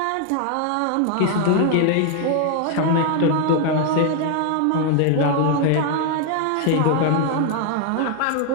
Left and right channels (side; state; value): both; different; correlation 0.00